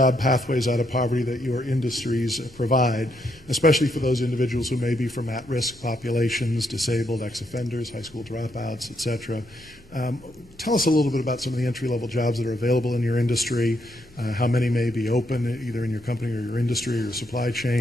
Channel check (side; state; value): both; normal; correlation 0.77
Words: pathways out of poverty that your industries provide, especially for those individuals who may be from at-risk populations, disabled, ex-offenders, high school dropouts, et cetera. Tell us a little bit about some of the entry-level jobs that are available in your industry, how many may be open either in your company or your industry or your supply